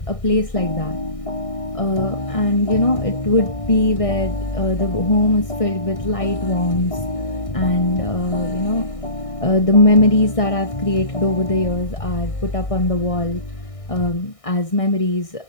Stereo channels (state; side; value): late; right; 1.6 ms